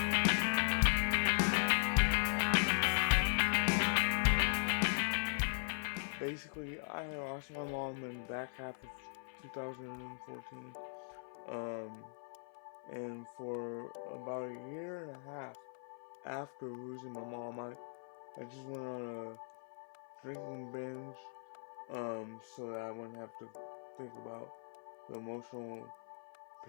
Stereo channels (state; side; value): silent; right; 52 dB below the other